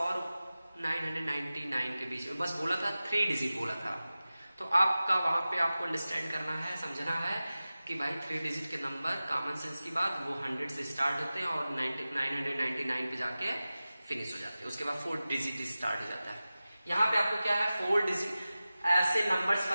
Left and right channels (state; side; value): inverted; both; correlation -0.96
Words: 999 के बीच में, बस बोला था 3 डिजिट बोला था। तो आपका वहां पे आपको अंडरस्टैंड करना है, समझना है कि भाई 3 डिजिट के नंबर कॉमन सेंस की बात वो 100 से स्टार्ट होते हैं और 999 पे जाके फिनिश हो जाते हैं, उसके बाद 4 डिजिट स्टार्ट हो जाता है। यहाँ पे आपको क्या है, 4 डिजिट ऐसे नंबर्स